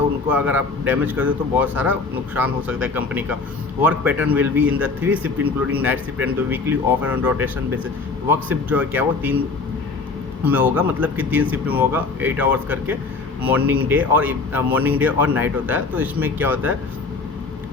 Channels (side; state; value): right; quieter; 4.1 dB